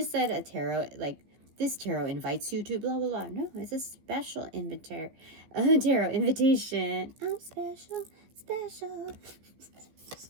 said a tarot, like, this tarot invites you to blah, blah, blah. No, it's a special tarot invitation. I'm special.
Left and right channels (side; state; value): left; late; 15 ms